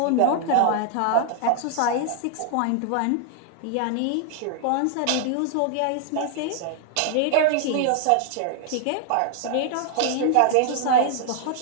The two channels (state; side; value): different; both; correlation 0.00